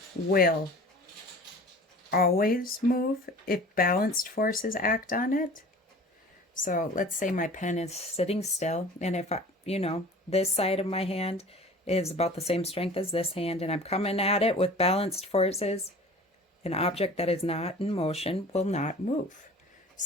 will always move if balanced forces act on it. So let's say my pen is sitting still, and if I, this side of my hand is about the same strength as this hand, and I'm coming at it with balanced forces, an object that is not in motion will not move.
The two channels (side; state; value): both; normal; correlation 0.43